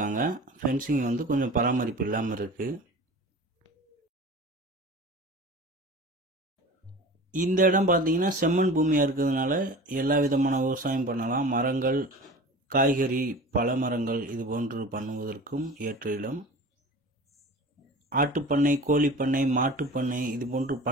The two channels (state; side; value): normal; both; correlation 0.37